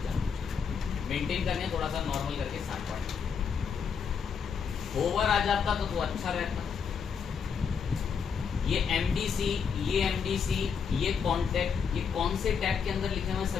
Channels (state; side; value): quieter; right; 6.5 dB